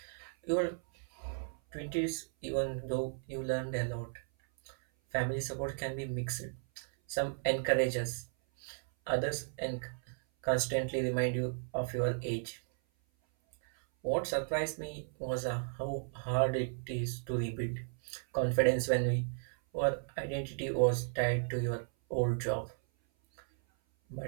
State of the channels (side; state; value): left; silent; 54 dB below the other